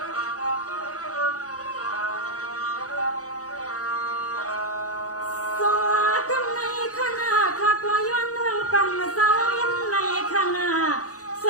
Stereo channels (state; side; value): late; right; 0.66 ms